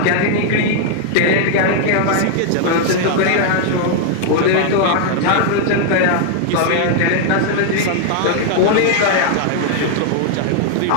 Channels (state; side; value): different; both; correlation 0.00